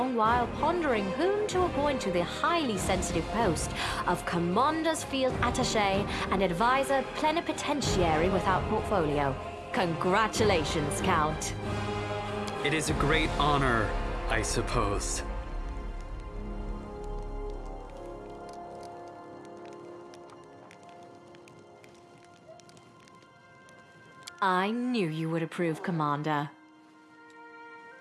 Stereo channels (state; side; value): identical; both; correlation 1.00